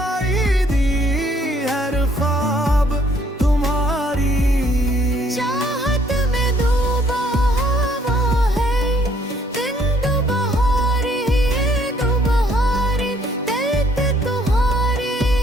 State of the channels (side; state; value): both; normal; correlation 0.64